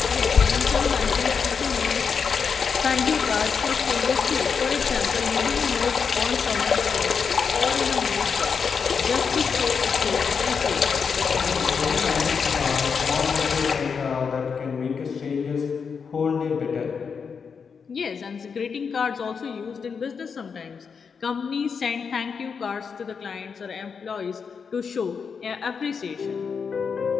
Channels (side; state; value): right; quieter; 6.0 dB